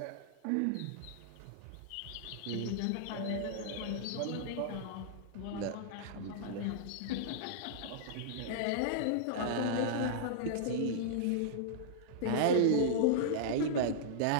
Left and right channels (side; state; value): both; different; correlation -0.02